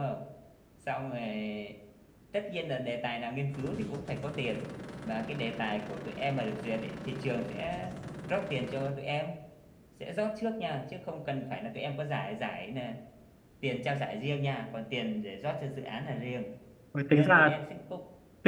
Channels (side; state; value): both; identical; correlation 1.00